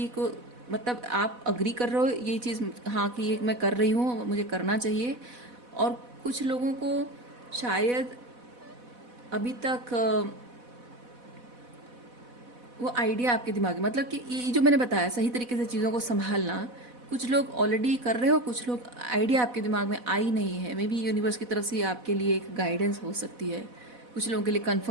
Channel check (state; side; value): late; left; 4.1 ms